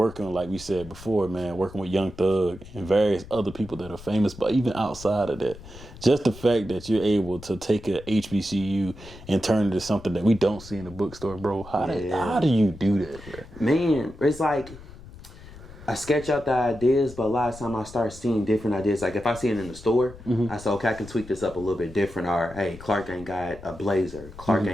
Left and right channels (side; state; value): left; noise; rumble, 17 dB below the sound